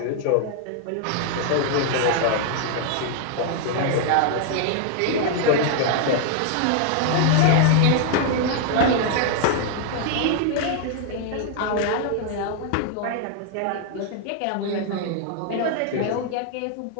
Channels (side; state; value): both; different; correlation 0.00